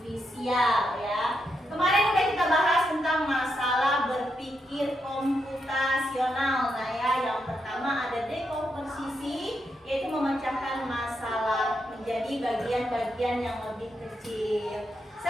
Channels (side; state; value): both; normal; correlation 0.82